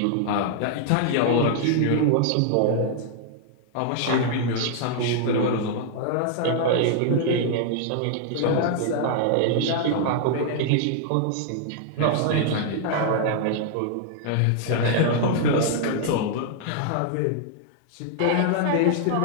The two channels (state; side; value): different; both; correlation 0.00